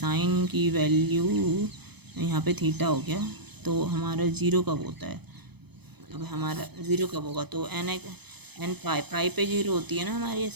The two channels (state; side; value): late; left; 0.98 ms